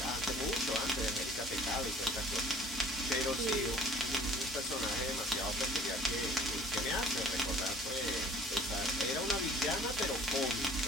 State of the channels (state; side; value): normal; both; correlation 0.49